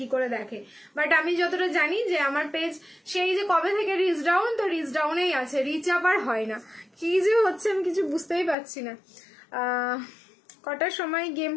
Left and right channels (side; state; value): right; drops out; at 8.6 s